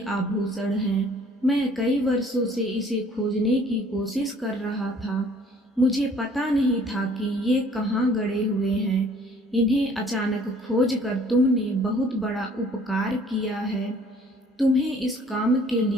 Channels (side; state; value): both; normal; correlation 0.57